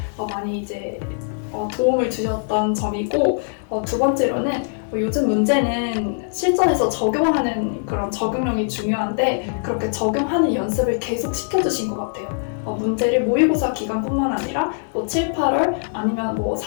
많이 이제 도움을 주셨던 점이고, 두 번째로는 요즘 문제는 실전에서 적용하는 그런 적용력이 중요한데 그렇게 적용하는 연습을 계속 시켜주신 것 같아요. 문제를 모의고사 기간뿐만 아니라 7, 8월 아니면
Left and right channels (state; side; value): silent; right; digital silence